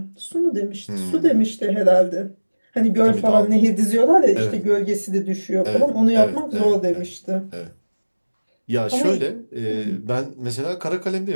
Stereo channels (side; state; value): both; inverted; correlation -1.00